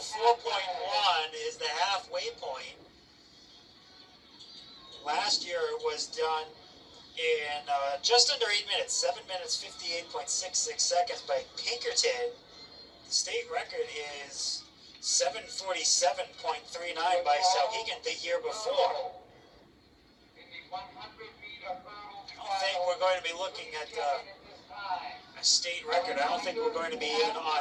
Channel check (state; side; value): identical; both; correlation 1.00